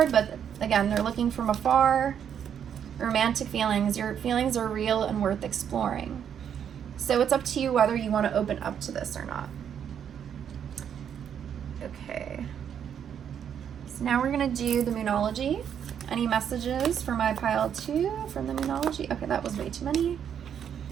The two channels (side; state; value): left; quieter; 8.6 dB